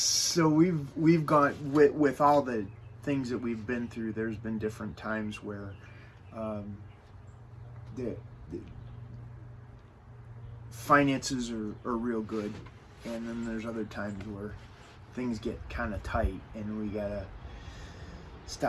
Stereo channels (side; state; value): both; identical; correlation 1.00